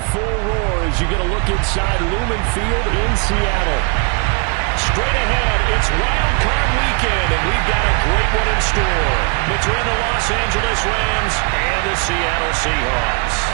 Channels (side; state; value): left; quieter; 33.4 dB